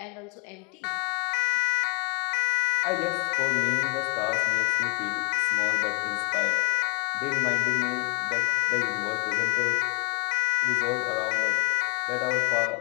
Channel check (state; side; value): quieter; right; 34.0 dB